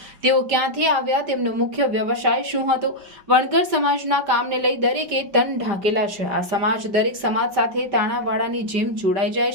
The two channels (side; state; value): left; late; 5.1 ms